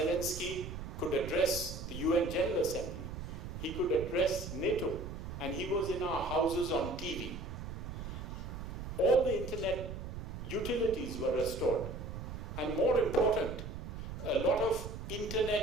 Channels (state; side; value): noise; right; rumble, 8 dB below the sound